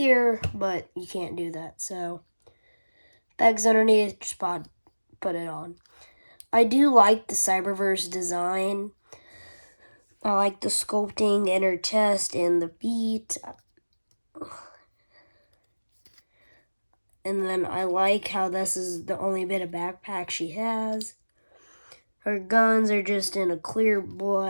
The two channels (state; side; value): inverted; both; correlation -1.00